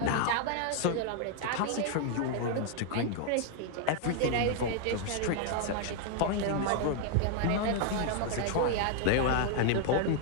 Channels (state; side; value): different; both; correlation 0.00